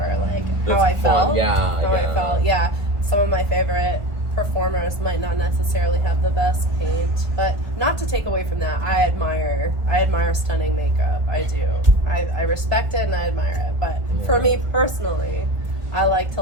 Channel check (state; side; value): late; left; 1.4 ms